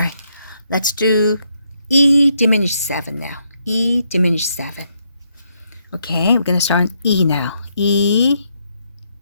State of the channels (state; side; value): inverted; both; correlation -0.76